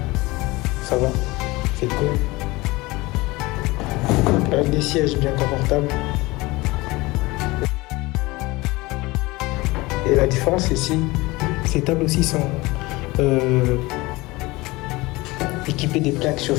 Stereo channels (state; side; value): quieter; right; 21.7 dB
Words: Ça va. C'est cool. Avec des sièges bien confortables. Et la différence ici, ces tables aussi sont équipées des plaques